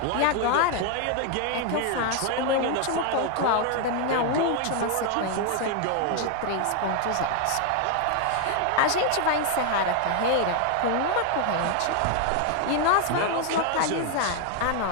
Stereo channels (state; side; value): different; both; correlation 0.01